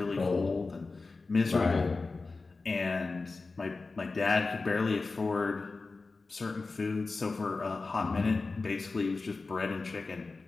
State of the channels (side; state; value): right; quieter; 3.8 dB